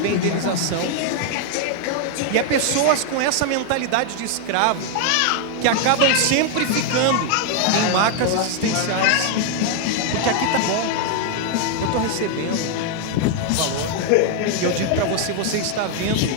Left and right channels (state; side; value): different; both; correlation 0.00